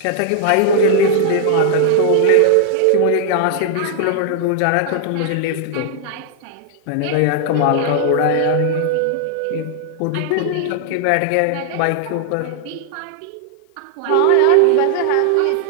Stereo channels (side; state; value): both; different; correlation -0.01